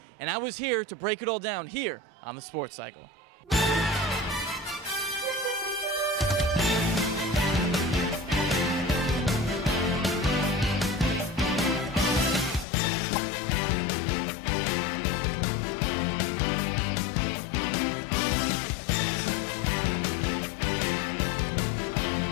and I was here to break it all down here on the Sports Cycle.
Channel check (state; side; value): drops out; right; at 12.7 s